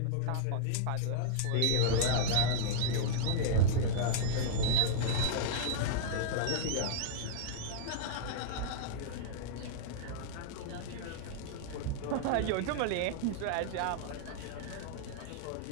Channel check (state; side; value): different; both; correlation -0.01